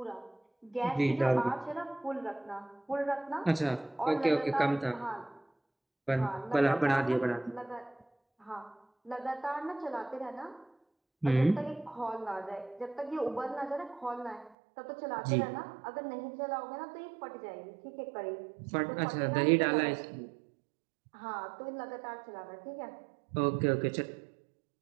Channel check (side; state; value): left; drops out; at 14.6 s